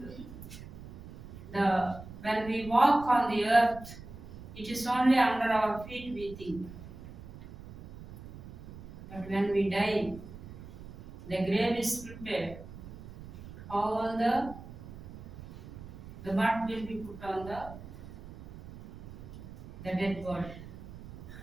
the When we walk on the earth, it is only under our feet we think. But when we die, the grave is prepared. All the mud will be put on the dead body.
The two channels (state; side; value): noise; right; rumble, 14 dB below the sound